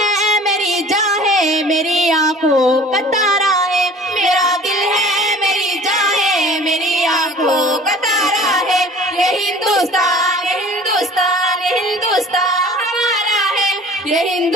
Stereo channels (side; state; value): both; normal; correlation 0.46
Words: ہے میری جان ہے میری آنکھوں کا تارا ہے، میرا دل ہے میری جان ہے میری آنکھوں کا تارا ہے، یہ ہندوستان ہندوستان ہندوستان ہمارا ہے، یہ